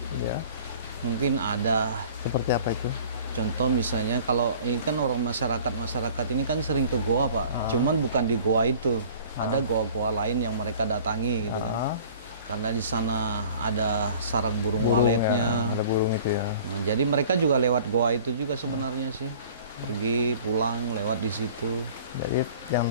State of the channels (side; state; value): both; inverted; correlation -0.48